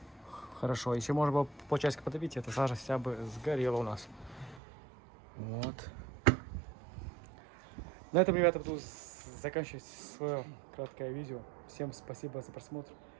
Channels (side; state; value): left; drops out; at 4.6 s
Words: Хорошо. Еще можно было полчасика потопить, эта сажа вся бы сгорела у нас. Вот. На этом, ребята, буду заканчивать свое краткое видео. Всем спасибо за просмотр.